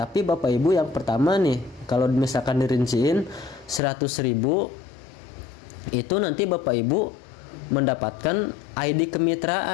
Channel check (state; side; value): drops out; right; at 3.8 s